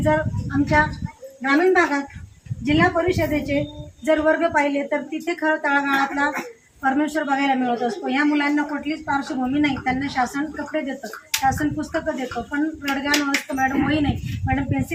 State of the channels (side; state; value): both; identical; correlation 1.00